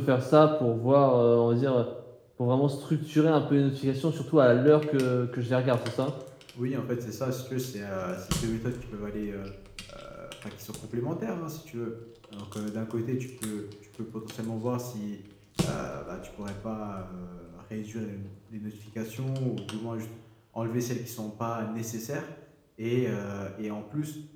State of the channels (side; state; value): both; identical; correlation 1.00